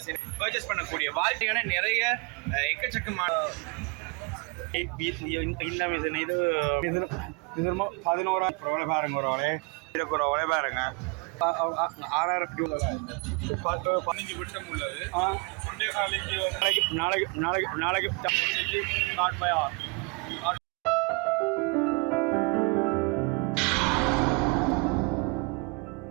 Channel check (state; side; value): quieter; left; 31.4 dB